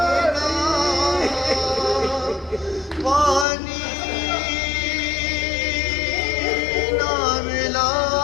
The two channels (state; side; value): drops out; right; at 3.5 s